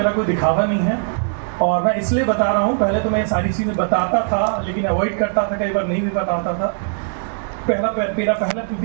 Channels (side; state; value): left; silent; 66 dB below the other